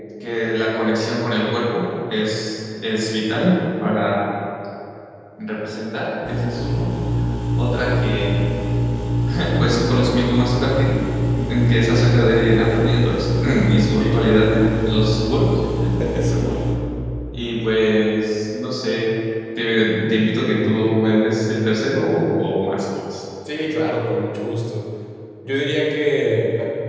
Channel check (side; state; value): both; identical; correlation 1.00